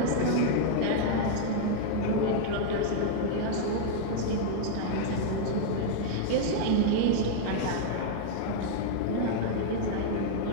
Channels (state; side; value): different; both; correlation -0.01